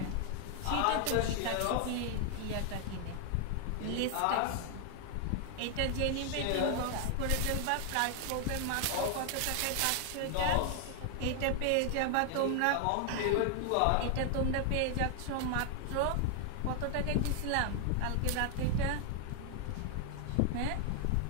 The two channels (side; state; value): both; different; correlation 0.00